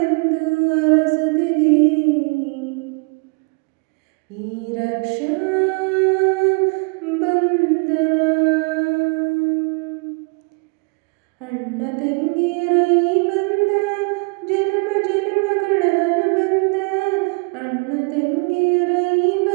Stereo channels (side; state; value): left; quieter; 32.5 dB